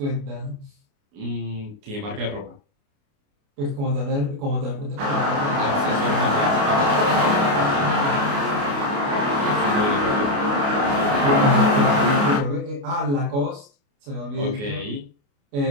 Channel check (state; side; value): late; left; 28 ms